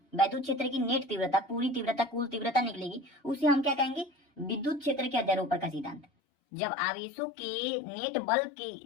विद्युत क्षेत्र की नेट तीव्रता, पूरी तीव्रता, कुल तीव्रता निकलेगी, उसे हम क्या कहेंगे, विद्युत क्षेत्र के अध्यारोपण का सिद्धांत। जब आवेशों के नेट बल के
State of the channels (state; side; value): drops out; right; at 6.1 s